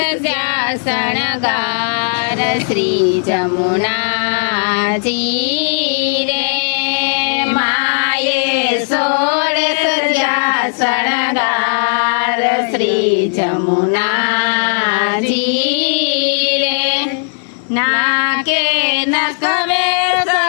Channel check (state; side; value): silent; right; 70 dB below the other